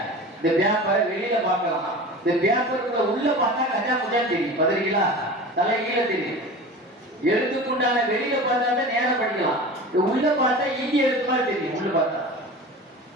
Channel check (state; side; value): normal; both; correlation 0.34